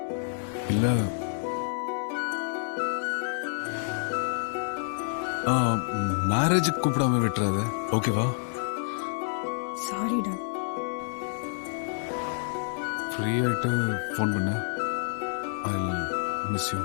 இல்ல, மேரேஜுக்கு கூப்பிடாம விட்டுறாத, ஓகேவா? சாரிடா. ஃப்ரீ ஆயிட்டு ஃபோன் பண்ண. I miss you.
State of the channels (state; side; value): silent; right; 59 dB below the other